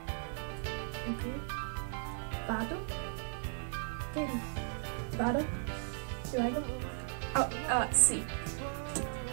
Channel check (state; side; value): silent; left; 53 dB below the other